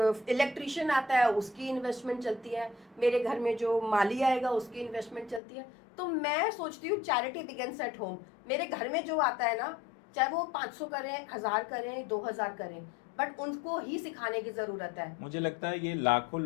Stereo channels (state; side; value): drops out; right; at 5.4 s